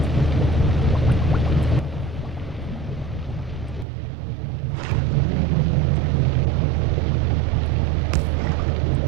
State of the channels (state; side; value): drops out; left; at 3.9 s